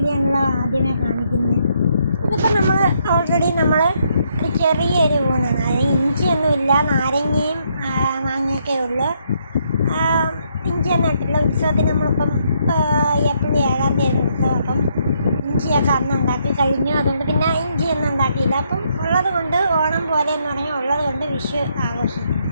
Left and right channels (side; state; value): both; inverted; correlation -0.73